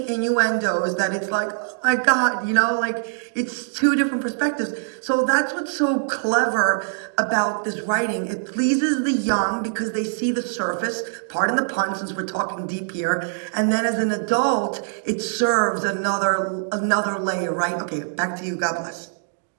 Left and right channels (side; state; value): left; silent; digital silence